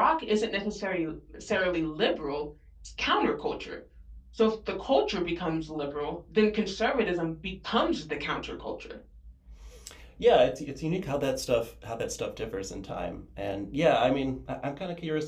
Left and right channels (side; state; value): both; identical; correlation 1.00